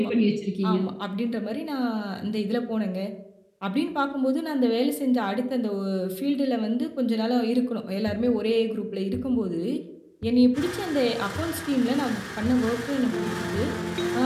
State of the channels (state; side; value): identical; both; correlation 1.00